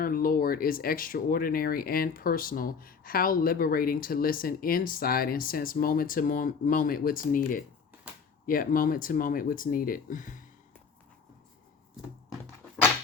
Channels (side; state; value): right; quieter; 5.7 dB